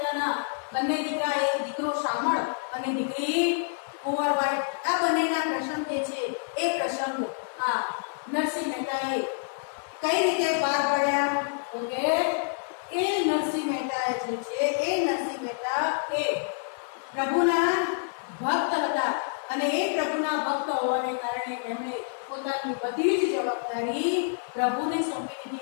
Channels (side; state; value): right; silent; 60 dB below the other